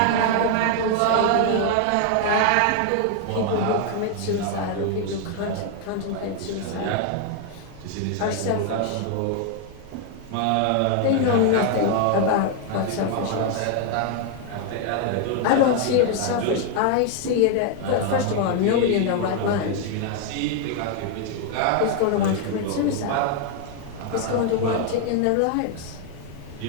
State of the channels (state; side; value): different; both; correlation 0.00